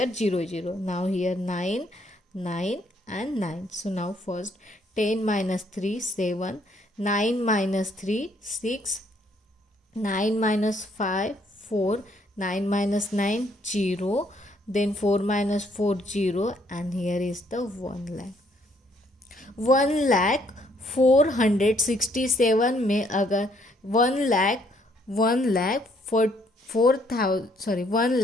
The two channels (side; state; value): both; normal; correlation 0.67